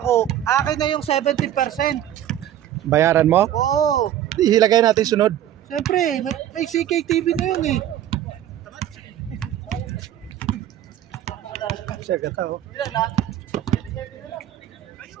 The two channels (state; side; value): quieter; left; 11.6 dB